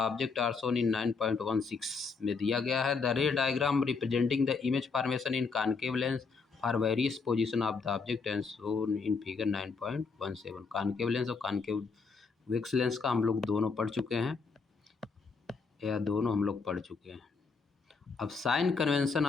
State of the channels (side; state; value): right; quieter; 4.8 dB